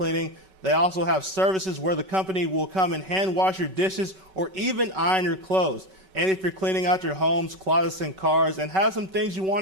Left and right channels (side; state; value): left; late; 5.3 ms